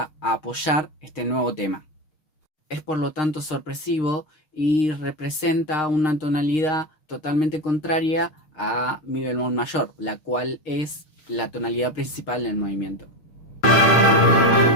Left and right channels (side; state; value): right; late; 6.5 ms